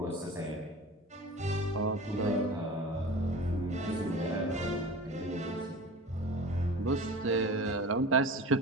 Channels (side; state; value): both; normal; correlation 0.36